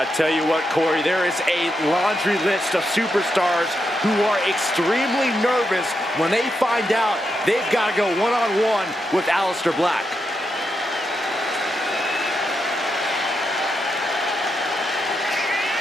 tell you what, Corey, there is a laundry list of superstars who are extremely nervous when they find out they've got to go one-on-one with Aleister Black.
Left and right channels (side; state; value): both; normal; correlation 0.84